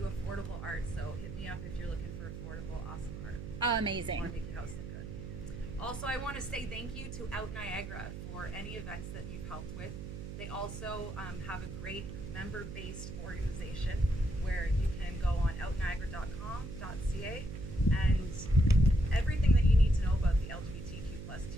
affordable art. So hit me up if you're looking for affordable, awesome art. Want Amazing. to make your house look good. Also, I want to say thank you to Out Niagara for any events that you've helped with. They also have a great member-based organization where you can go on outniagara.com.ca and everything that you need to know about the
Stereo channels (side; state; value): right; noise; hum, 8 dB below the sound